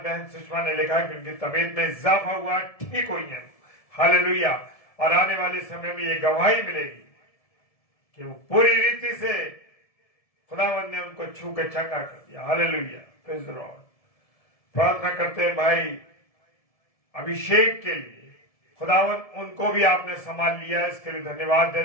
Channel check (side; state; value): right; late; 1.7 ms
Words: सुषमा ने लिखा कि उनकी तबीयत में इजाफा हुआ, ठीक हुई है। हालेलुया। और आने वाले समय में ये गवाही मिलेगी कि वो पूरी रीति से खुदावन ने उनको छू के चंगा कर दिया। हालेलुया। Praise the Lord. प्रार्थना करते हैं भाई अभिषेक के लिए, खुदावन उनको भी आपने संभाल लिया है, इसके लिए धन्यवाद